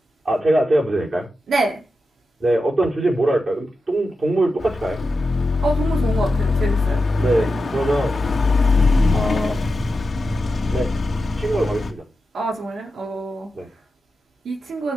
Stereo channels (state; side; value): normal; both; correlation 0.90